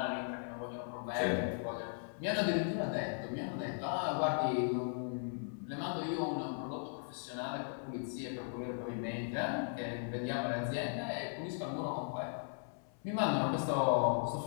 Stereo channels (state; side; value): silent; right; 53 dB below the other